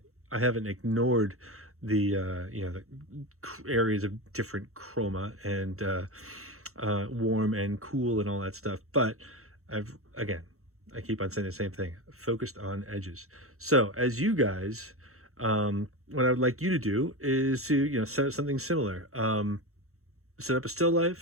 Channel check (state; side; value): late; left; 0.64 ms